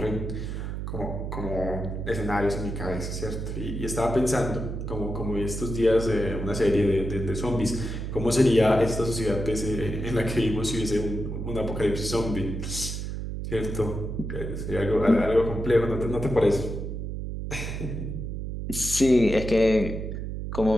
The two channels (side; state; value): right; noise; hum, 5 dB below the sound